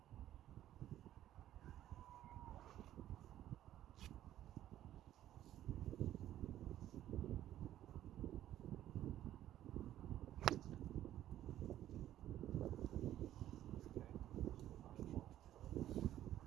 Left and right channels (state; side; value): quieter; left; 12.5 dB